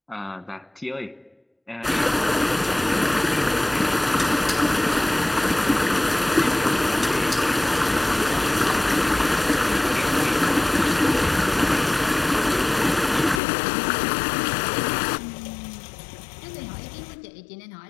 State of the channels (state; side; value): drops out; right; at 13.4 s